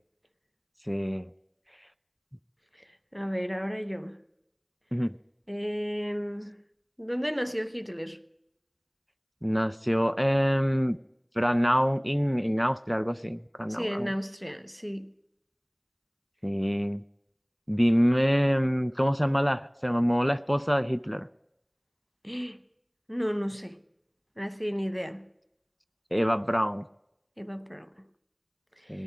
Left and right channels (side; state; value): both; identical; correlation 1.00